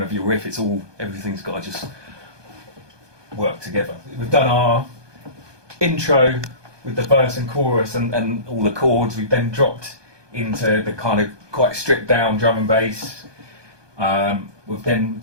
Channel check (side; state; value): left; late; 1.2 ms